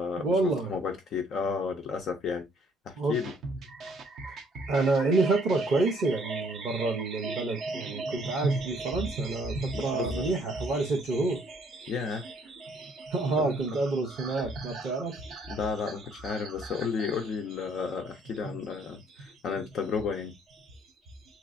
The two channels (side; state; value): both; normal; correlation 0.63